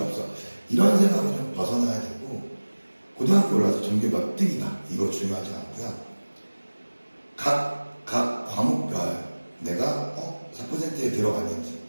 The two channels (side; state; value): both; inverted; correlation -1.00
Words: 이런 생각을 좀 벗어나야 되고 고등학교 올라서 전교 몇 등이다 이거 중요하지 않고요. 각 과목별 내가 4%에 들어갔는지